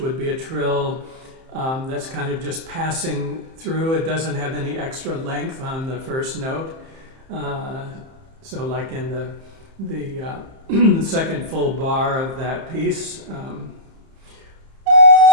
be a trill that's kind of just passing through. It doesn't have any extra length on the first note. So like in the second full bar of that piece,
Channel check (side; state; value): left; late; 30 ms